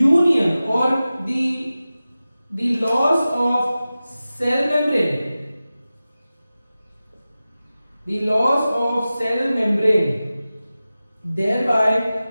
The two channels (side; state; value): both; inverted; correlation -0.95